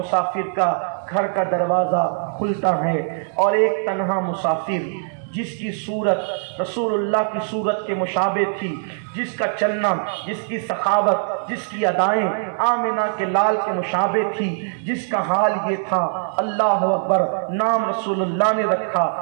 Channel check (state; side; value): silent; left; digital silence